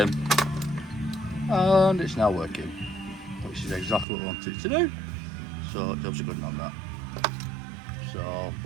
and it's now working, which is exactly what I wanted it to do. So jobs are good on that. So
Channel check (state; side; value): drops out; left; at 4.0 s